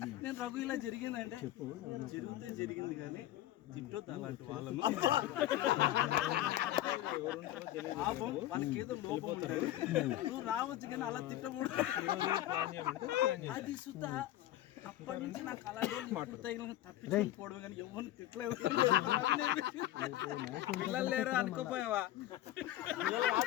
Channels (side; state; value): right; quieter; 14.5 dB